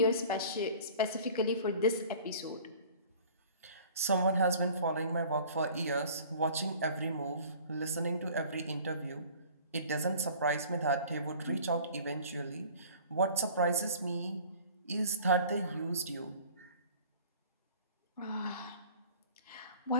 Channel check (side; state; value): both; inverted; correlation -0.47